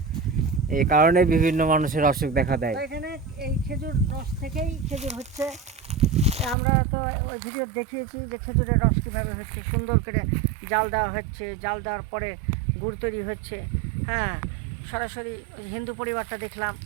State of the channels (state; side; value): drops out; left; at 6.6 s